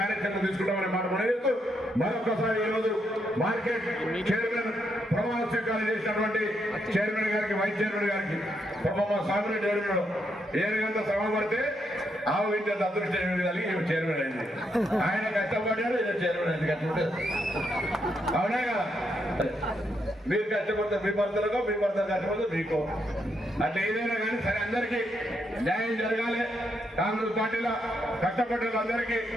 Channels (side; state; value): both; normal; correlation 0.79